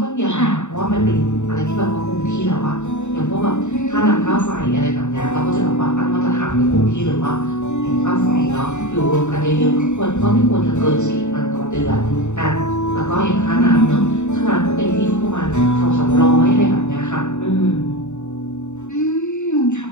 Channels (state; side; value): late; right; 0.84 ms